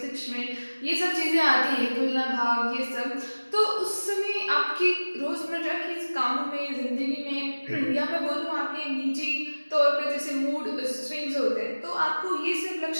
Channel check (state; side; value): inverted; both; correlation -1.00